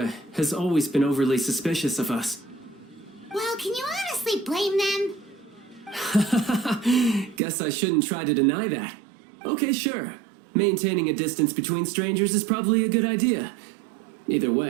has always been overly suspicious of us. Well, can you honestly blame them? Guess I shouldn't try to deny that. Okay, sure. Maintaining a distance between strangers is probably a good idea. Either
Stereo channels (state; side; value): drops out; left; at 7.4 s